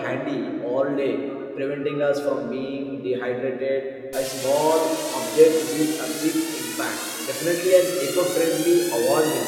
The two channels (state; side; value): identical; both; correlation 1.00